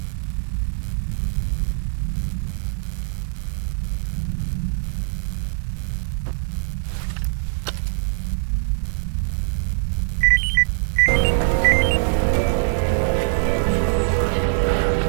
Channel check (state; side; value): silent; left; digital silence